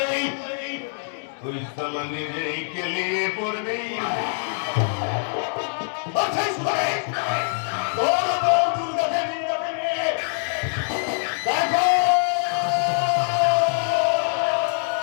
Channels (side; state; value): right; silent; digital silence